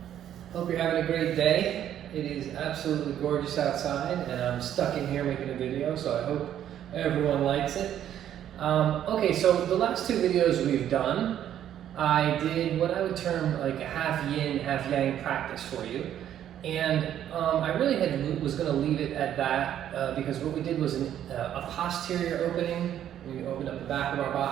Hope you're having a great day. It is absolutely gorgeous outside and I'm stuck in here making a video, so I hope everyone likes it. Okay, so the last two videos we've done, I did what I would term like a half yin, half yang practice for you. And I really was going to leave it at that because what we did was a posterior opening. We opened up the back of our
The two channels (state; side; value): quieter; left; 10.7 dB